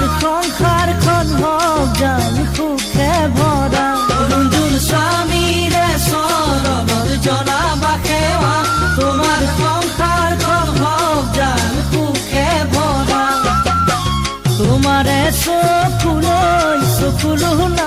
সংসাৰখন হওক জান সুখে ভৰা। অৰুণজোন স্বামীৰে চৰণত জনাবা সেৱা, তোমাৰ সংসাৰখন হওক জান সুখে ভৰা। তোমাৰে চকুলো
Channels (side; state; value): both; identical; correlation 1.00